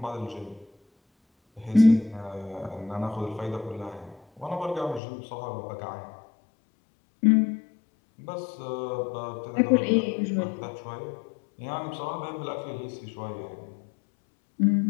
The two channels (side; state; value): right; drops out; at 5.0 s